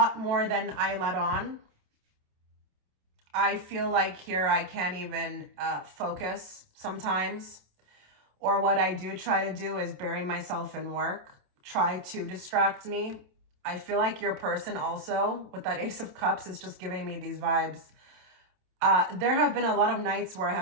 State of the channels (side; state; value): left; late; 27 ms